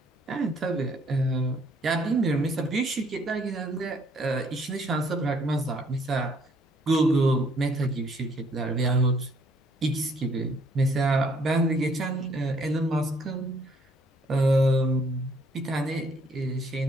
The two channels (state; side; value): normal; both; correlation 0.65